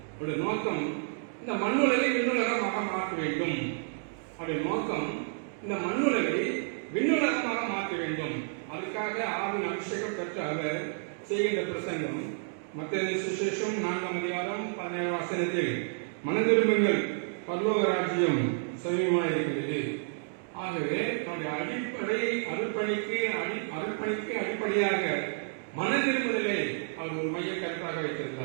அவருடைய நோக்கம் இந்த மண்ணுலகை விண்ணுலகமாக மாற்ற வேண்டும். அவருடைய நோக்கம் இந்த மண்ணுலகை விண்ணுலகமாக மாற்ற வேண்டும். அதுக்காக ஆவின் அபிஷேகம் பெற்ற அவர் செய்கின்ற பிரசங்கம் மத்தேயு சுவிசேஷம் 4ஆம் அதிகாரம் 17ஆம் வசனத்தில் மனதிரும்புங்கள், பரலோக ராஜ்யம் சமீபமாக இருக்கிறது. ஆகவே நம்முடைய அடிப்படை அருட்பணிக்கு அடிப்படையாக மனதிரும்புதலை அவர் ஒரு மைய கருத்தாக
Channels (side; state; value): left; silent; digital silence